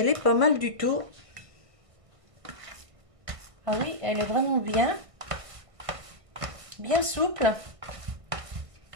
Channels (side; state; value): left; late; 1.6 ms